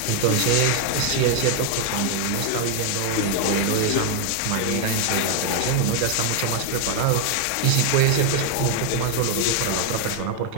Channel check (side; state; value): both; different; correlation 0.00